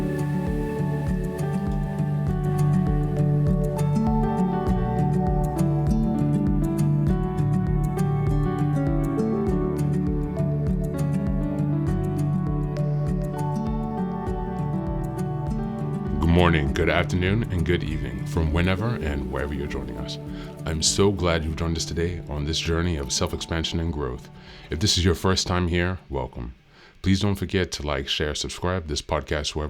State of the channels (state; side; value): identical; both; correlation 1.00